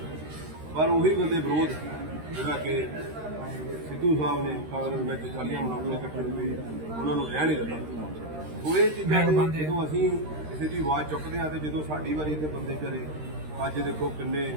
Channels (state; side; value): late; left; 13 ms